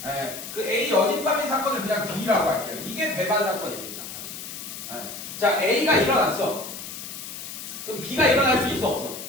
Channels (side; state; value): left; noise; hiss, 10 dB below the sound